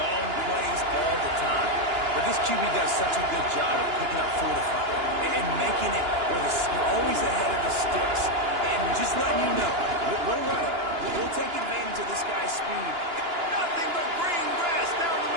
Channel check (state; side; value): late; left; 2.9 ms